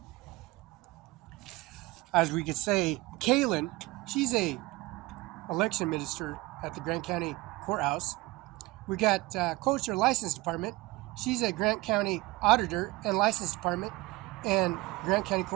As we could say, Kaylin, she's a election minister at the Grant County Courthouse. We got Culture License Department. She's a Grant County Auditor and License Department and Grant County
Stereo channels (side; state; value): left; quieter; 20.8 dB